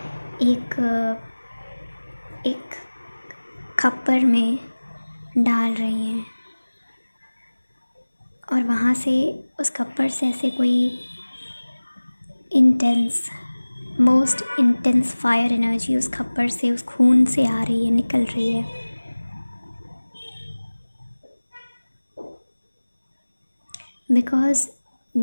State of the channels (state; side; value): inverted; both; correlation -1.00